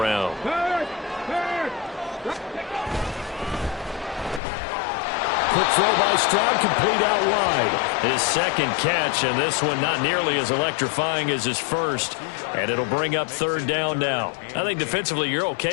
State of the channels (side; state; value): right; drops out; at 4.4 s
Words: Quick throw by Stroud, complete out wide. His second catch, and this one not nearly as electrifying as his first. And it'll bring up 3rd down now. I think defensively you're